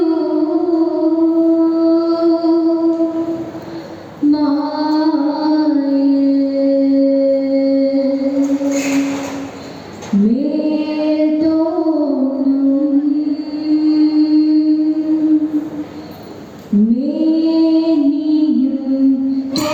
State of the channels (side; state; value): both; identical; correlation 1.00